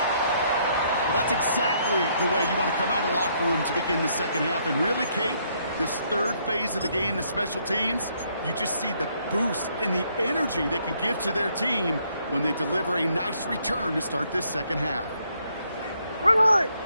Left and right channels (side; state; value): both; inverted; correlation -0.70